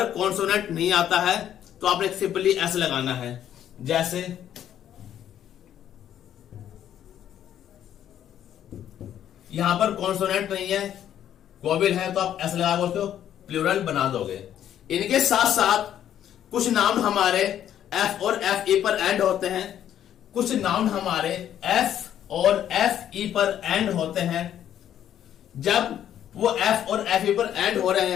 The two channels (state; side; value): quieter; right; 10.5 dB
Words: आता है तो आपने सिंपली एस लगाना है। जैसे यहां पर कॉन्सोनेंट नहीं है, वोवेल है, तो आप एस लगाओगे, उसको प्लूरल बना दोगे। इनके साथ साथ कुछ नाउन हमारे एफ और एफ ई पर एंड होते हैं, कुछ नाउन हमारे एफ और एफ ई पर एंड होते हैं। जब वो एफ और एफ ई पर एंड हो रहे